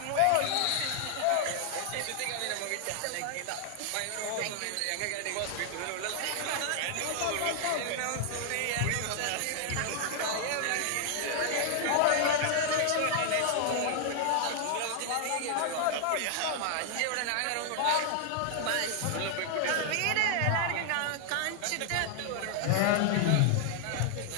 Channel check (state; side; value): different; both; correlation 0.00